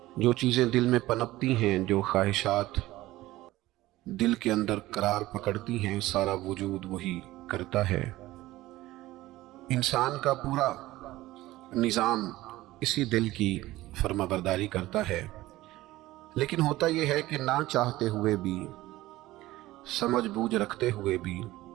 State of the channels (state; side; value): quieter; left; 17.1 dB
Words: جو چیزیں دل میں پنپتی ہیں، جو خواہشات دل کے اندر قرار پکڑتی ہیں، سارا وجود وہی کرتا ہے۔ انسان کا پورا نظام اسی دل کی فرما برداری کرتا ہے۔ لیکن ہوتا یہ ہے کہ نہ چاہتے ہوئے بھی، سمجھ بوجھ رکھتے ہوئے بھی،